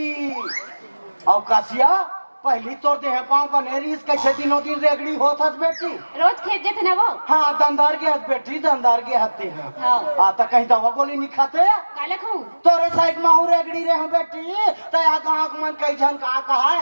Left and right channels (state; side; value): inverted; both; correlation -1.00